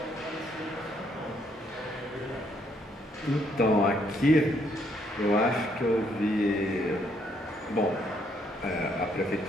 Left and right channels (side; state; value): both; normal; correlation 0.71